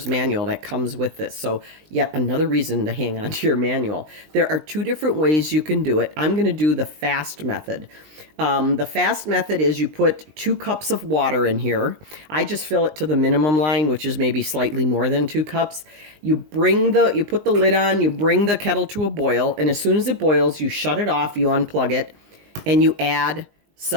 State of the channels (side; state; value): left; late; 20 ms